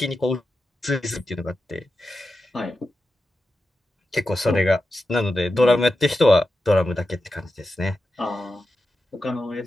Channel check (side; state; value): both; normal; correlation 0.90